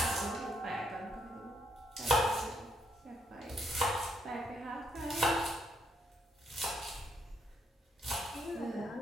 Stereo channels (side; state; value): both; normal; correlation 0.74